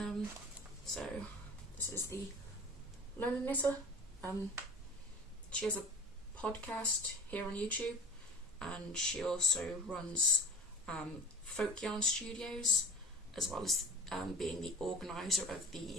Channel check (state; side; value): normal; both; correlation 0.39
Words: So this is the Lone Knitter. She has a podcast here on YouTube, and she also runs Folk Yarn Studios, as well as being the organiser of